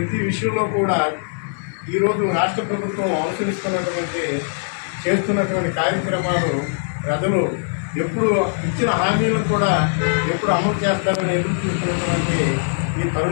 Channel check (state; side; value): silent; right; 65 dB below the other